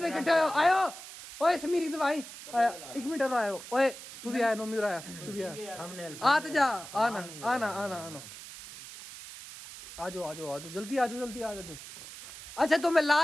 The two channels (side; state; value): right; noise; hiss, 14 dB below the sound